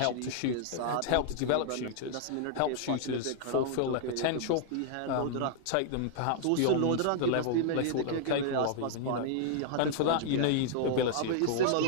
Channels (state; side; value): different; both; correlation -0.01